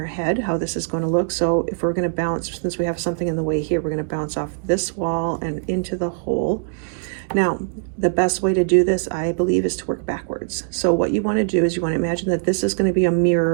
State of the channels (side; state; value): left; silent; digital silence